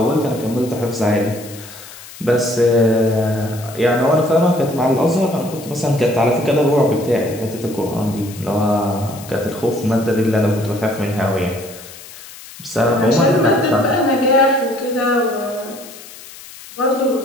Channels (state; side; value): noise; left; hiss, 17 dB below the sound